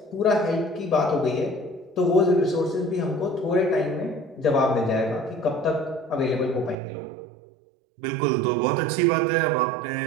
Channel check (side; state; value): left; drops out; at 6.8 s